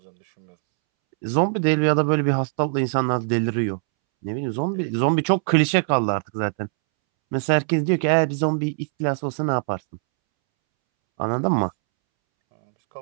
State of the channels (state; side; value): silent; left; 64 dB below the other